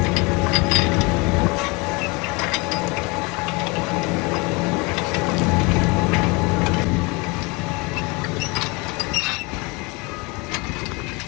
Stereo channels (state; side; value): quieter; right; 27.3 dB